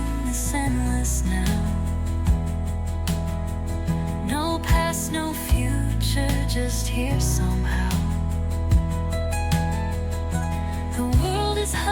this endless now. No past, no future, just here somehow. The world is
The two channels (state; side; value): identical; both; correlation 1.00